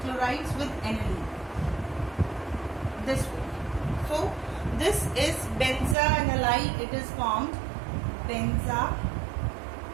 chlorides with aniline. This way. So this is benzoanilide. It is formed.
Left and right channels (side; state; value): left; drops out; at 6.0 s